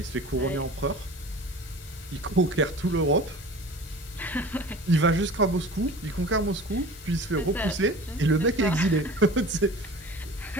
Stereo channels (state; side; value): normal; both; correlation 0.40